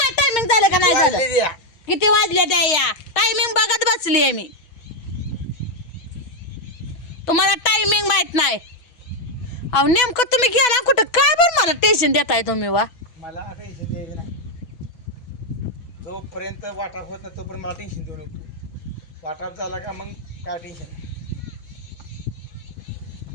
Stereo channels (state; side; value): late; right; 6.1 ms